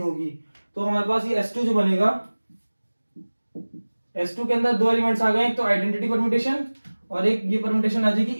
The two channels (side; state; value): both; inverted; correlation -1.00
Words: होगी। तो हमारे पास ये S2 जो बनेगा, S2 के अंदर दो एलिमेंट्स आ गए, एक तो आइडेंटिटी परम्यूटेशन और एक ये परम्यूटेशन आ जाएगी